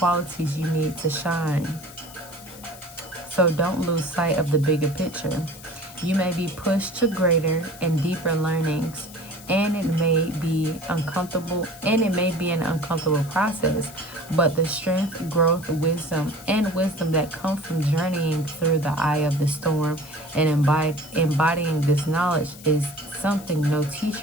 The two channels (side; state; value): left; noise; hiss, 18 dB below the sound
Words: you need to shine. So don't lose sight of the bigger picture. You may be pushed to greater and deeper learnings, and it may be an uncomfortable process, but the strength, growth, wisdom that come from journeying through the eye of the storm and embodying this knowledge is something no